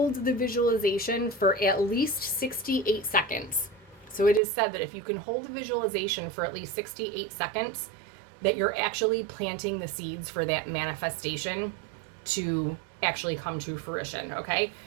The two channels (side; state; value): left; drops out; at 4.4 s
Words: the visualization for at least 68 seconds. So it is said that if you can hold a visualization for at least 68 seconds, that you're actually planting the seeds for that manifestation to actually come to fruition. Okay.